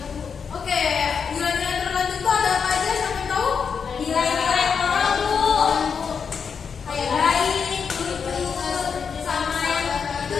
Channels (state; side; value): quieter; right; 6.3 dB